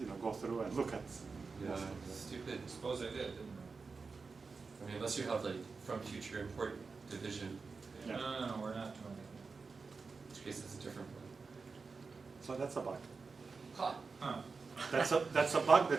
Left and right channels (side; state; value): left; quieter; 4.6 dB